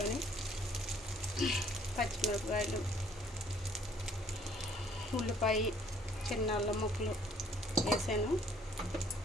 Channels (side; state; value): both; normal; correlation 0.61